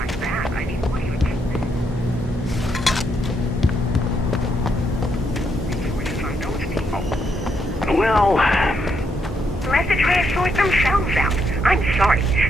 that. I mean, what do you... From those people. Well... Let the trash sort themselves out. I'm sorry,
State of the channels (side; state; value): both; normal; correlation 0.77